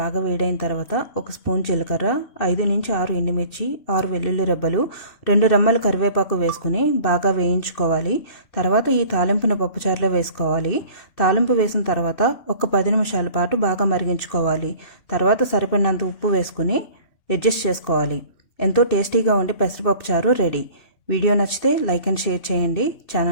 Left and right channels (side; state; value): right; late; 2.6 ms